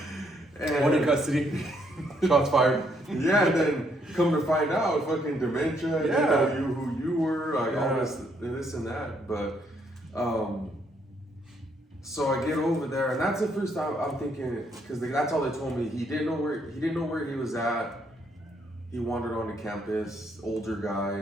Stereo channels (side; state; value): both; normal; correlation 0.72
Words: And, one in custody. Shots fired. Yeah, and then come to find out, fucking dementia. Yeah. You know who you were, like Yeah. all this and that. But so I get over there, and that's the first time I'm thinking, because that's all they told me. He didn't know where he was at. He wandered onto campus, older